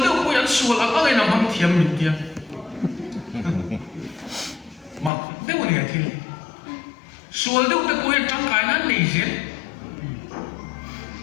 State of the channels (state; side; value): drops out; right; at 5.1 s